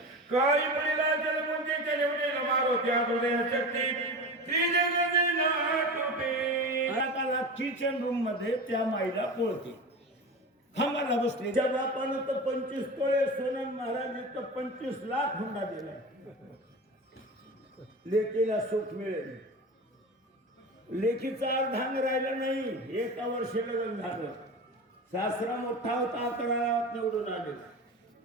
काही मुलीला जलमुंजे केले मारो त्या हृदय शक्ती श्री जगदे नाटुटे. आता किचन रूम मध्ये त्या माईला पोळते खांबाला बसले. त्या बापानं तर 25 तोळे सोनं, महाराज तर 25 लाख हुंडा दिलाय. लेकीला सुख मिळेल. लेकीचा अर्धांग राहिलं नाही. एका वर्षी लग्न झालं. सासरा मोठा होता, 11 गावात निवडून आले.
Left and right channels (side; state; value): both; normal; correlation 0.29